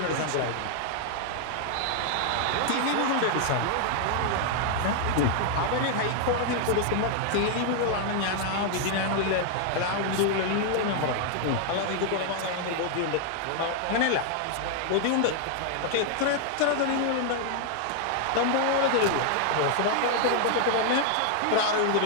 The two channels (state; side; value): different; both; correlation 0.00